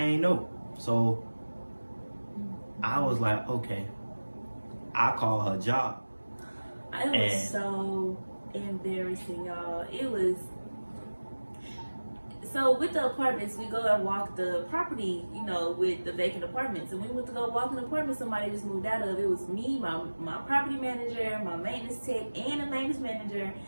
know. So I was like, okay, I call her job. It was so embarrassing, y'all. It was. So with the apartments, we go and walk the property, you know, with the vacant apartments. And we went to go walk an apartment somebody just moved out of. It was me, my property manager, my maintenance tech, and the maintenance manager.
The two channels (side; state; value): both; inverted; correlation -1.00